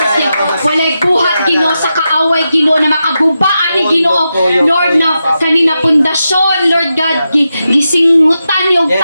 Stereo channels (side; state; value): both; inverted; correlation -0.88